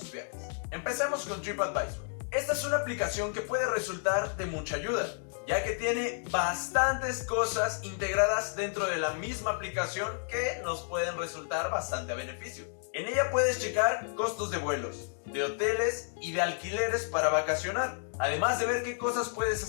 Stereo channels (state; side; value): silent; right; 57 dB below the other